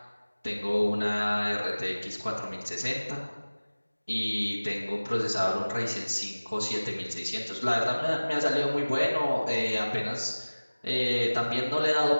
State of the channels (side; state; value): both; inverted; correlation -1.00